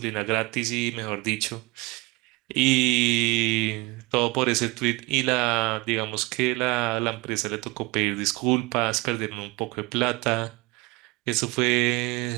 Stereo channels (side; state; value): left; quieter; 24.8 dB